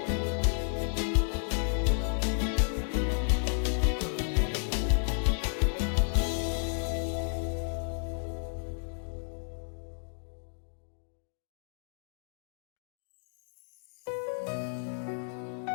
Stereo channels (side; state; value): right; silent; digital silence